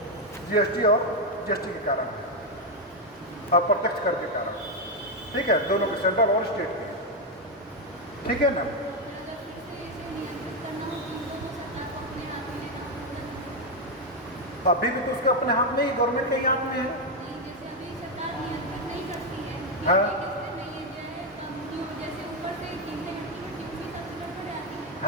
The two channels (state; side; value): normal; both; correlation 0.04